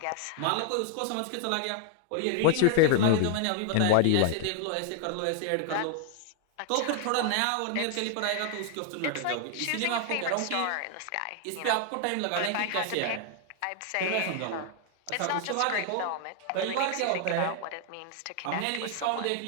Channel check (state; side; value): different; both; correlation 0.00